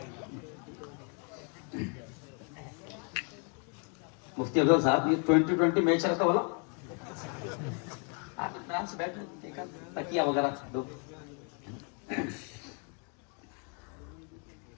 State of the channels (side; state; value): right; quieter; 37.4 dB